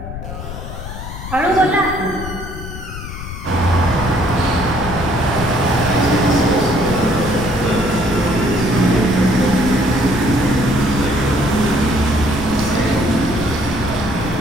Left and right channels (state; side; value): noise; left; rumble, 10 dB below the sound